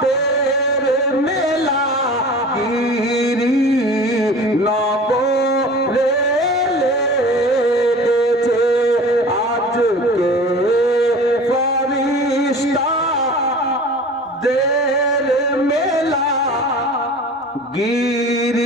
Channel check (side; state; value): both; normal; correlation 0.40